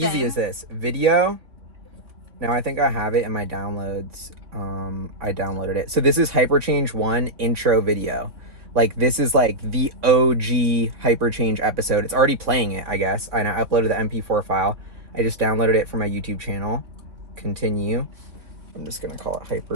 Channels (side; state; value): left; late; 3.6 ms